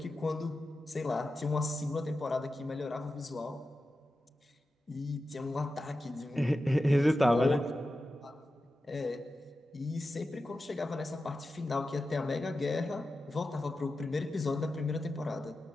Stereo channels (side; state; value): both; normal; correlation 0.92